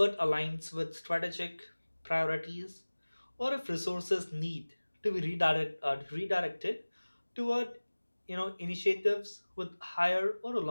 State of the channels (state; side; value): inverted; both; correlation -1.00